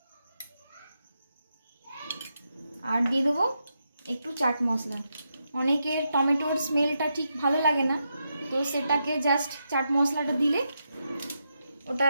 আর দিয়ে দেবো একটু চাট মশলা। অনেকের টমেটোর স্মেলটা ঠিক ভালো লাগে না, তো সেটাকে জাস্ট চাট মশলাটা দিলে ওটা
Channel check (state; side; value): inverted; both; correlation -0.84